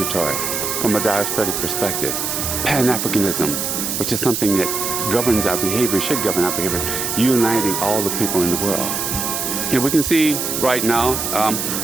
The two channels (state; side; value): noise; right; hiss, 2 dB below the sound